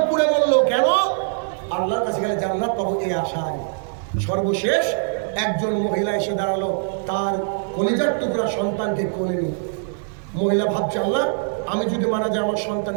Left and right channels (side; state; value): left; silent; digital silence